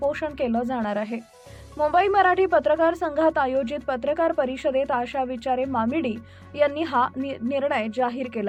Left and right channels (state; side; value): identical; both; correlation 1.00